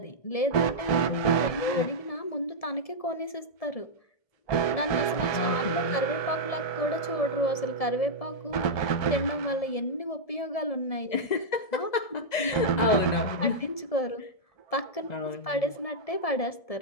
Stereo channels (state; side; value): late; right; 1.7 ms